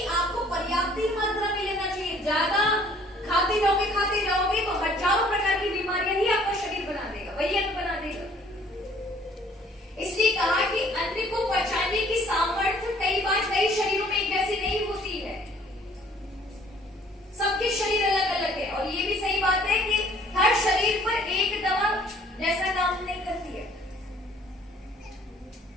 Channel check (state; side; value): normal; both; correlation 0.57